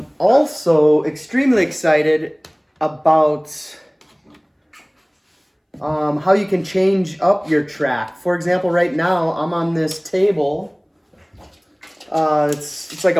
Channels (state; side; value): identical; both; correlation 1.00